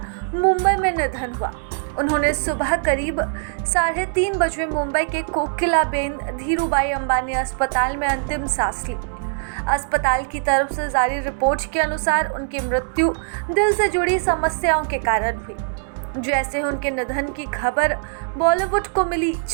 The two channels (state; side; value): silent; left; 64 dB below the other